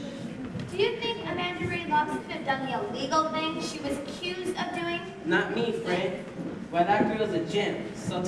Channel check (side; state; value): both; identical; correlation 1.00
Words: Do you think Amanda Ray Locks could have done the illegal thing she was accused of doing? Not me, friend. Why, that girl's a gem, salt